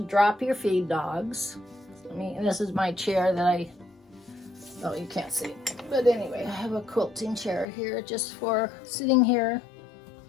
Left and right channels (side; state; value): right; drops out; at 7.7 s